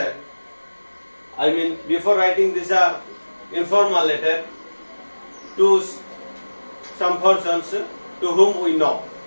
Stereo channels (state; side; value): inverted; both; correlation -1.00